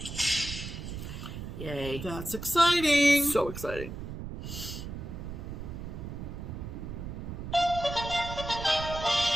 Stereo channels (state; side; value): noise; right; rumble, 8 dB below the sound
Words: Yay. That's exciting. So exciting.